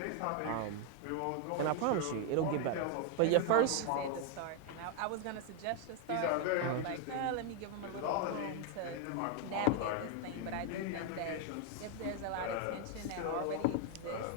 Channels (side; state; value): both; different; correlation 0.01